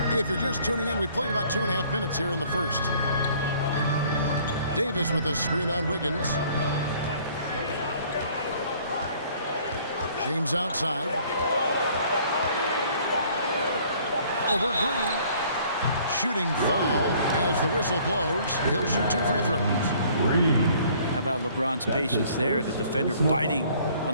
If you're just tuning in, we've played about 2.5 minutes here in the first. Davis with a screen on Wiggins. James outside. Over Green. Shooting foul as the whistle blows. He'll shoot 2 free throws. How about LeBron's patience there? The defender biting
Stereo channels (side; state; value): both; inverted; correlation -0.57